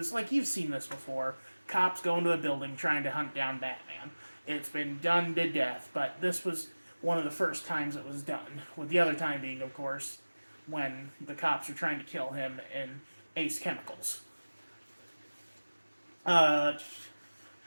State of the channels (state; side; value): inverted; both; correlation -1.00